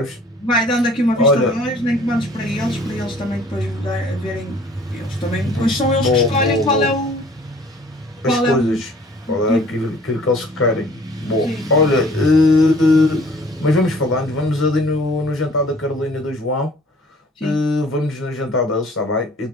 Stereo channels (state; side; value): normal; both; correlation 0.53